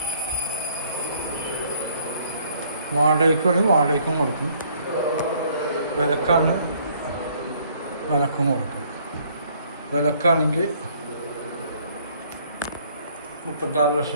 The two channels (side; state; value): both; inverted; correlation -0.62